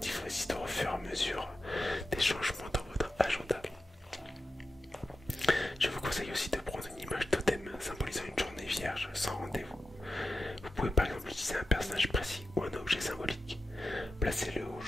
vos histoires au fur et à mesure des changements dans votre agenda. Je vous conseille aussi de prendre une image totem symbolisant une journée vierge sans rendez-vous. Vous pouvez par exemple utiliser un personnage précis ou un objet symbolique. Placez-le au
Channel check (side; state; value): both; normal; correlation 0.91